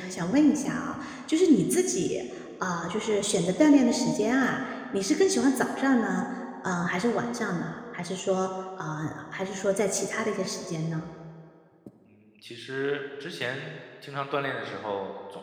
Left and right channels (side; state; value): both; identical; correlation 1.00